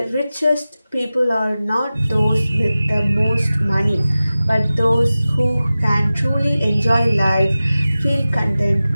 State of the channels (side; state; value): both; inverted; correlation -0.96